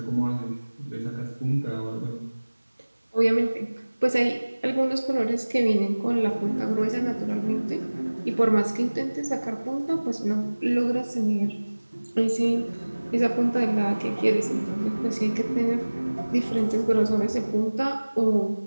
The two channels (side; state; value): both; inverted; correlation -1.00